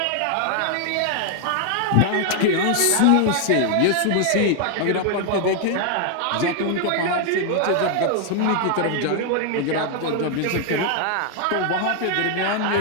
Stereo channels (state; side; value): different; both; correlation 0.00